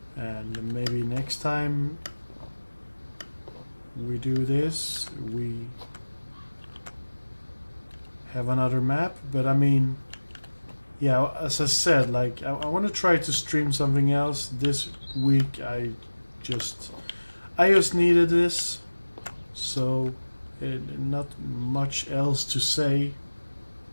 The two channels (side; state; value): both; inverted; correlation -1.00